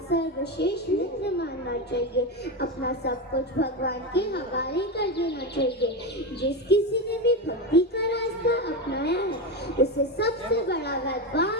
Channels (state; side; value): normal; both; correlation 0.15